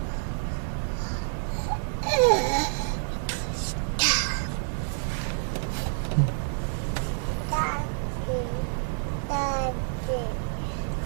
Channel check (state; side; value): silent; left; digital silence